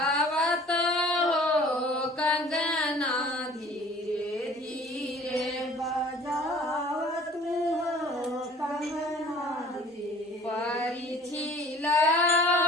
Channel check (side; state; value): both; normal; correlation 0.49